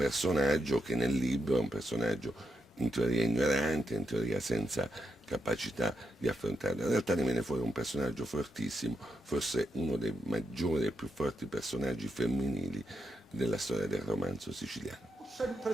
che nel libro è un personaggio in teoria ignorante, in teoria senza capacità di affrontarlo. In realtà ne viene fuori un personaggio fortissimo, forse uno dei maggiori e più forti personaggi femminili della storia del romanzo siciliano. Ho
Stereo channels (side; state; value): both; normal; correlation 0.84